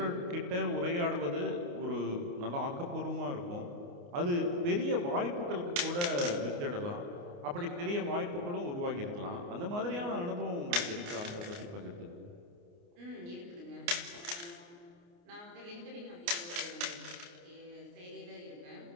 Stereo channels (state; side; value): late; left; 29 ms